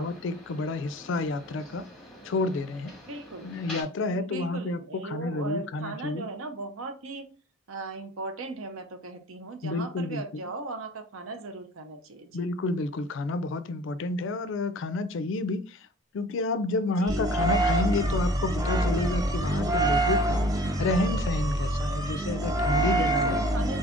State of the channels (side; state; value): both; normal; correlation 0.47